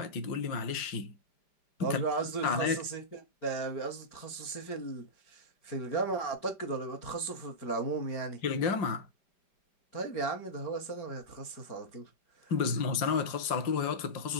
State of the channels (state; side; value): late; right; 5.0 ms